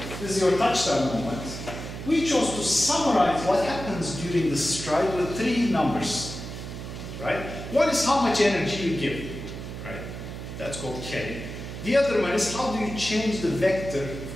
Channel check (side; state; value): right; noise; hum, 9 dB below the sound